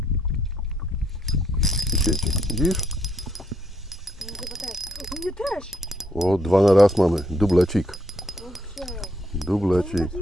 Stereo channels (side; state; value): both; normal; correlation 0.73